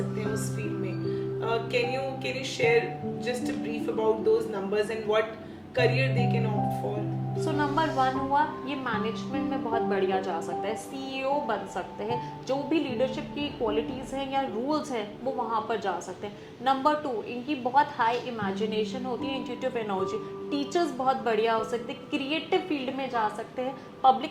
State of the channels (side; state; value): both; identical; correlation 1.00